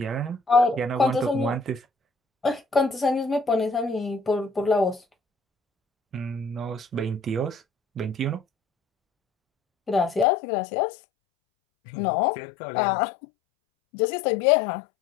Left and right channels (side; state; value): right; drops out; at 10.2 s